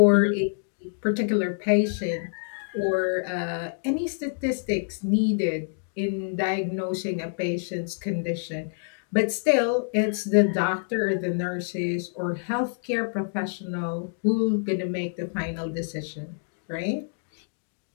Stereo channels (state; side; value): silent; right; digital silence